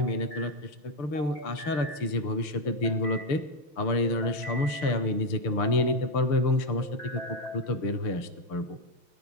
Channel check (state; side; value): late; right; 6.7 ms